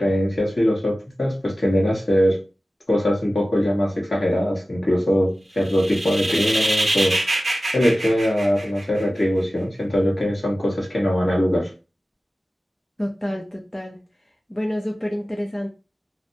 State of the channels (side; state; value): both; normal; correlation 0.96